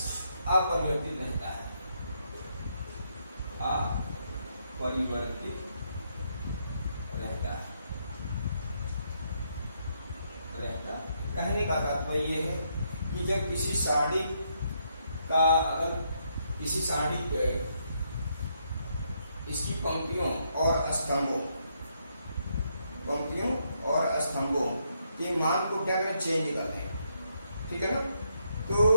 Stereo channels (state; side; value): inverted; both; correlation -0.76